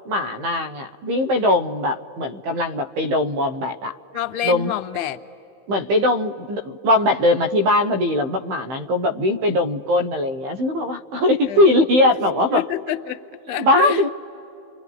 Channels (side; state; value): left; late; 15 ms